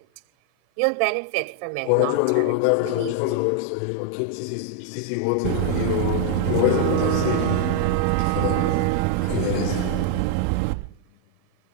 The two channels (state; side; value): different; both; correlation 0.00